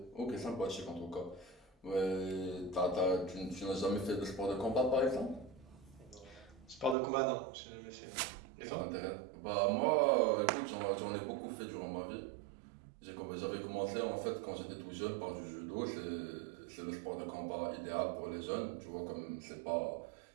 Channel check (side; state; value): left; drops out; at 7.0 s